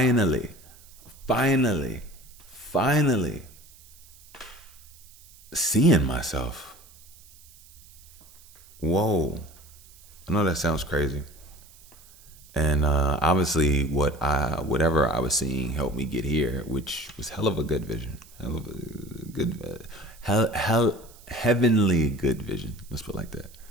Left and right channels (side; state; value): right; noise; hiss, 24 dB below the sound